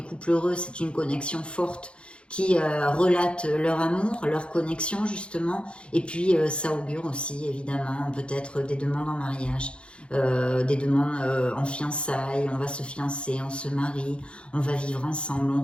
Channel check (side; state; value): right; late; 0.057 ms